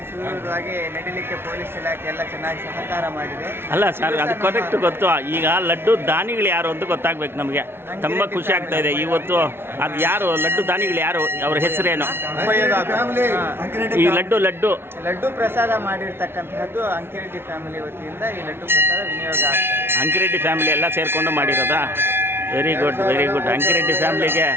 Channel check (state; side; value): late; left; 0.11 ms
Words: ಸುಲಭವಾಗಿ ನಡೀಲಿಕ್ಕೆ ಪೊಲೀಸ್ ಇಲಾಖೆ ಎಲ್ಲ ಚೆನ್ನಾಗಿ ಸಹಕಾರ ಮಾಡಿದೆ. ಅಲ್ಲ ಸರ್, ಅದು ಕರೆಕ್ಟ್ ಗೊತ್ತು. ಈಗ ಲಡ್ಡು ದಾನಿಗಳು ಯಾರು ಅಂತ ಗೊತ್ತಾಗ್ಬೇಕು ನಮಗೆ. ತುಂಬ ಖುಷಿ ಆಗ್ತಾ ಇದೆ ಇವತ್ತು. ಅದು ಯಾರು ಲಡ್ಡು ದಾನಿಗಳು ಯಾರು, ಅವ್ರ ಹೆಸರೇನು? ಈ ಲಡ್ಡು ಪ್ರಸಾದ ಮಾಡಿರ್ತಕ್ಕಂತಹದ್ದು ಅಂಕಿರೆಡ್ಡಿ ಫ್ಯಾಮಿಲಿ ವತಿಯಿಂದ ಈ ಲಡ್ಡು ಪ್ರಸಾದ ವಿನಿಯೋಗ ಆಗ್ತಾ ಇದೆ. ಅಂಕಿರೆಡ್ಡಿ ಫ್ಯಾಮಿಲಿ ಎಲ್ಲ ಸೇರಿಕೊಂಡು ಮಾಡಿರೋದಾ? Very good, very good. Ankireddy ಫ್ಯಾಮಿಲಿಗೆ